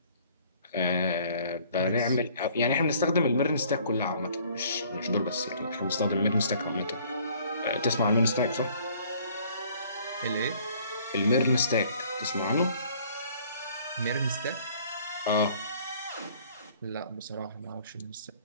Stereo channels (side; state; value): both; inverted; correlation -0.57